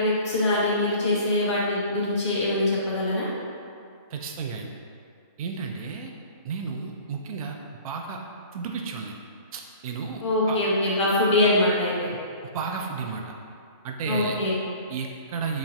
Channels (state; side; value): inverted; both; correlation -0.45